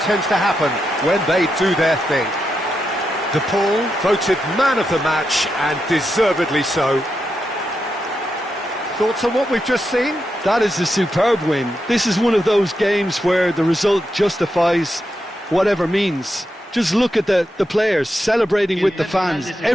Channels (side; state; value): both; normal; correlation 0.85